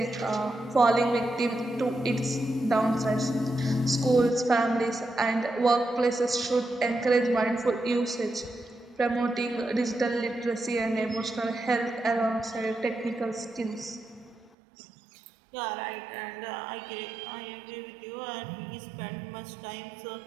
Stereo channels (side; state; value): left; drops out; at 14.5 s